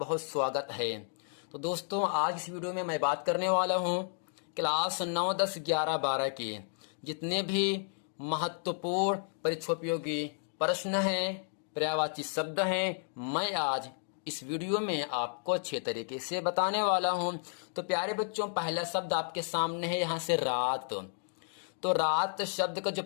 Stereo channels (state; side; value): silent; right; digital silence